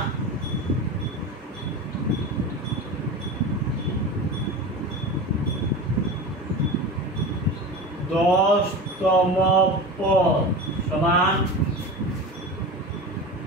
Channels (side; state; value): both; normal; correlation 0.29